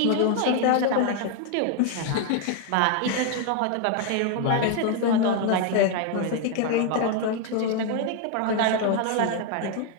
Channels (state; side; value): different; both; correlation 0.01